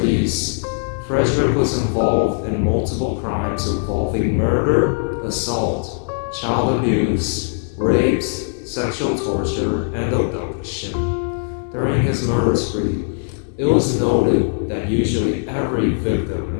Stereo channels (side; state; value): right; silent; 66 dB below the other